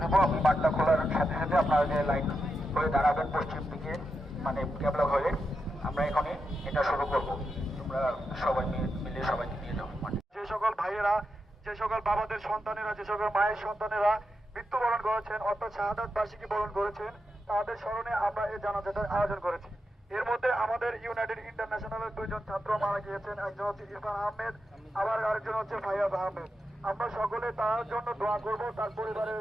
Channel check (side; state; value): both; normal; correlation 0.87